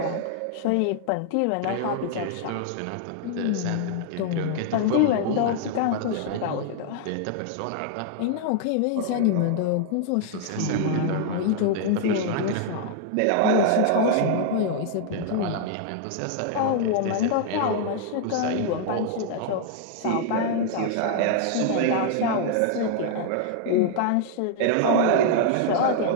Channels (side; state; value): both; different; correlation 0.00